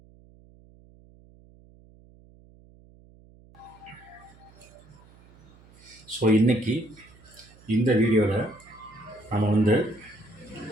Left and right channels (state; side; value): noise; right; hum, 25 dB below the sound